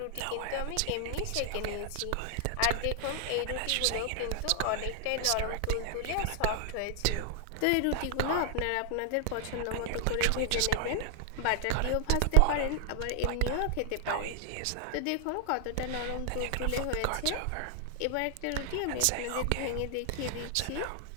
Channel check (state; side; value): different; both; correlation 0.00